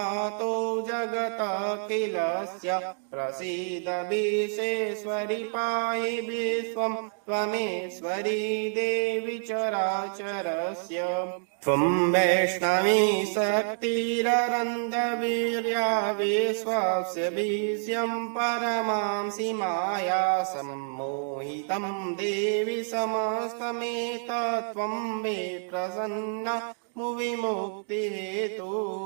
जगत किलस्य प्रसीद विश्वेश्वरि पाहि विश्वं त्वमेश्वरी देवी चराचरस्य। त्वं वैष्णवी शक्तिरनन्तवीर्या विश्वस्य विषयं परमां सीमाया सम्मोहितं देवी समस्तमेतत् त्वं मे प्रसन्ना मुविमुक्ति हेतु।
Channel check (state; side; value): silent; left; digital silence